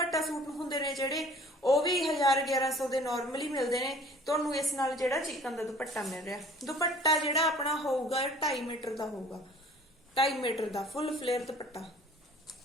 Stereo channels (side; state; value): both; normal; correlation 0.50